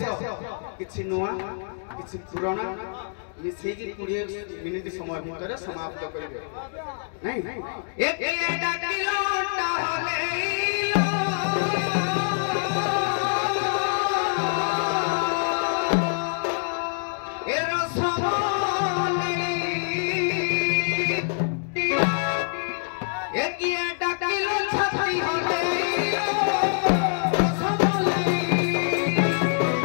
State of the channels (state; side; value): silent; right; digital silence